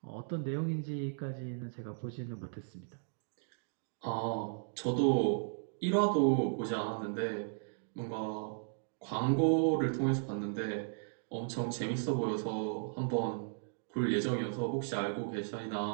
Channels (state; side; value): silent; left; digital silence